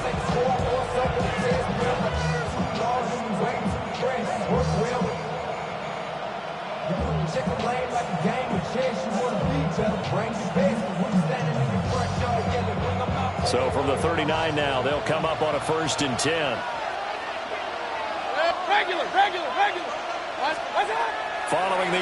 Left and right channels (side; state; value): both; identical; correlation 1.00